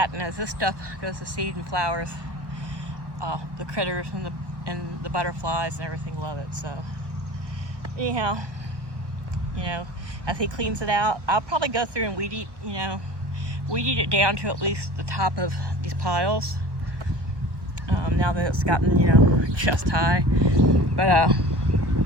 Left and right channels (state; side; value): late; left; 1.1 ms